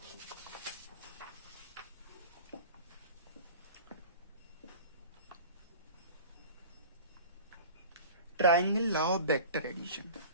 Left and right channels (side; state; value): both; inverted; correlation -0.38